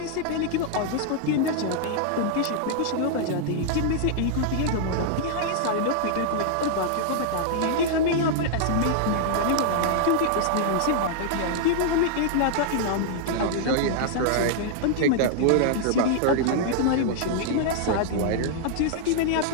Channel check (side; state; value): both; different; correlation -0.01